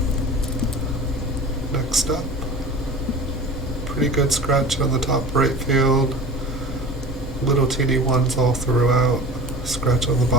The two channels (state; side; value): normal; both; correlation 0.37